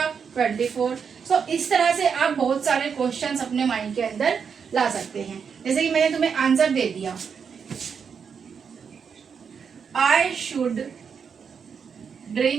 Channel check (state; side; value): quieter; left; 6.5 dB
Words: 24। सो इस तरह से आप बहुत सारे क्वेश्चंस अपने माइंड के अंदर ला सकते हैं। जैसे कि मैंने तुम्हें आंसर दे दिया, आई शुड